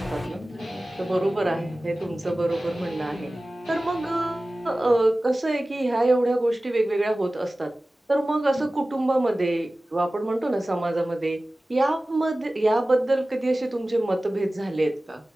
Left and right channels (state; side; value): normal; both; correlation 0.97